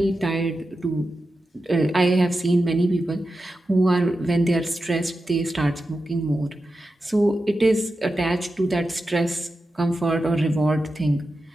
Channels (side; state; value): both; normal; correlation 0.91